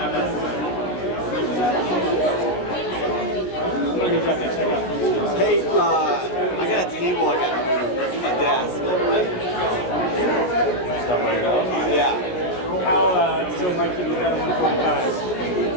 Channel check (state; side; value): late; right; 16 ms